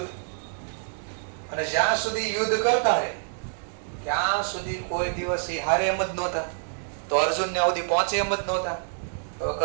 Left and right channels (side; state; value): left; silent; digital silence